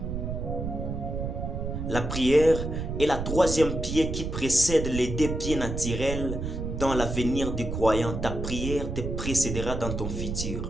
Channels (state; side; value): noise; right; rumble, 4 dB below the sound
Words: La prière est la 3e pied qui précède les 2 pieds naturels dans l'avenir du croyant. Ta prière te précédera dans ton